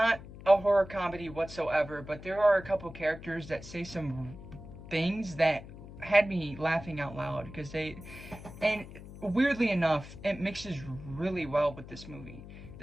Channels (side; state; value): left; noise; hum, 15 dB below the sound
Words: a horror comedy whatsoever, but there are a couple characters that say some things that had me laughing out loud, because and weirdly enough, it mixes really well with this movie.